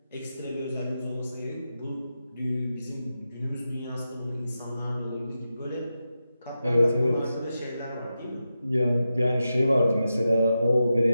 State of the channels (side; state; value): both; inverted; correlation -0.90